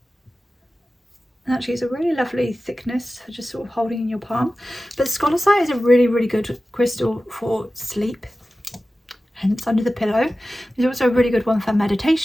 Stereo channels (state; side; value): normal; both; correlation 0.95